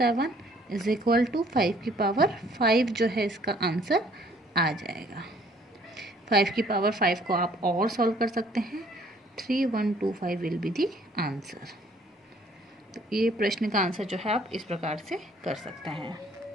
इज इक्वल टू 5 की पावर 5 जो है इसका आंसर आ जाएगा। 5 की पावर 5 को आप और सॉल्व कर सकते हैं, 3125 विल बी दी आंसर। तो ये प्रश्न का आंसर जो है आप इस प्रकार से कर सकते हैं।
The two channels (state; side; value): normal; both; correlation 0.60